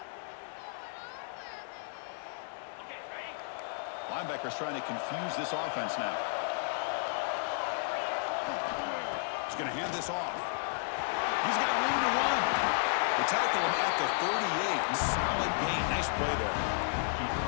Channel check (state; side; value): silent; right; digital silence